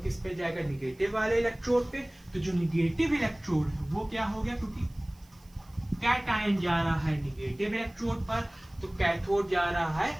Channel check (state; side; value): noise; right; hiss, 29 dB below the sound